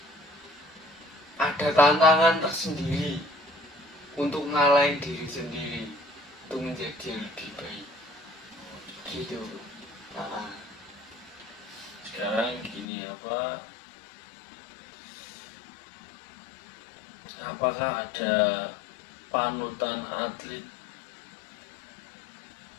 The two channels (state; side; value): drops out; right; at 12.9 s